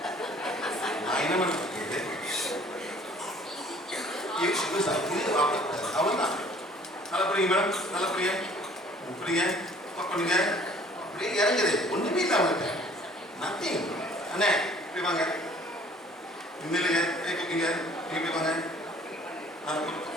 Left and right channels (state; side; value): normal; both; correlation 0.54